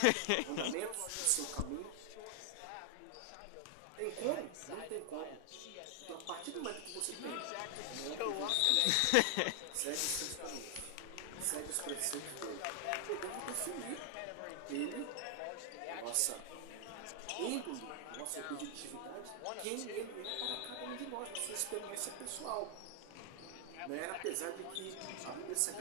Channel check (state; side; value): different; both; correlation 0.00